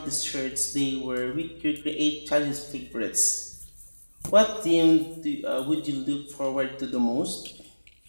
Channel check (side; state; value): both; inverted; correlation -1.00